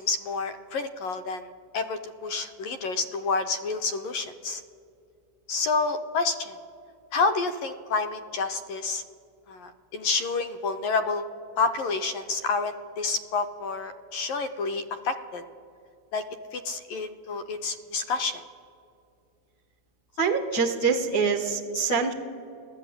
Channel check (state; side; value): late; right; 11 ms